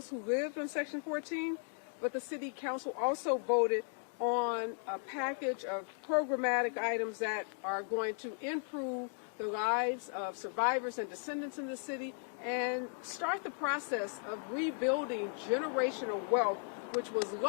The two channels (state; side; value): silent; right; 54 dB below the other